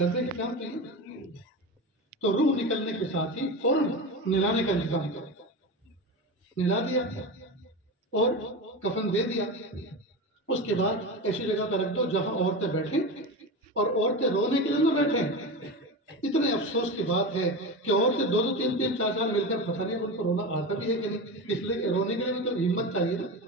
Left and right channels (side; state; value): both; normal; correlation 0.23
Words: کے کام تو یہ تو روح نکلنے کے ساتھ ہی فوراً نلانے کا انتظام کرو۔ نلا دیا اور کفن دے دیا، اس کے بعد ایسی جگہ پہ رکھ دو جہاں عورتیں بیٹھیں، اور عورتیں رونے کے لیے نہ بیٹھیں۔ اتنے افسوس کی بات ہے کہ عورتیں 2-2 3-3 4-4 مل کر پتہ نہیں ان کو رونا آتا بھی ہے کہ نہیں، اس لیے کہ رونے کے لیے بھی تو ہمت چاہیے نا،